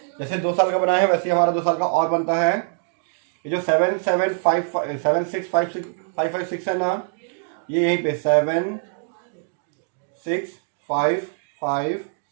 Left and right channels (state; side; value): silent; left; digital silence